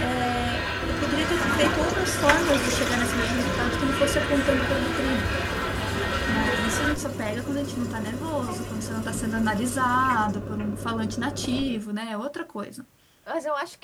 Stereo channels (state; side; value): identical; both; correlation 1.00